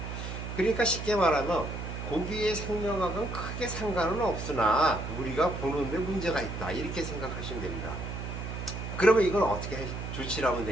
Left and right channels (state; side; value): noise; right; hum, 6 dB below the sound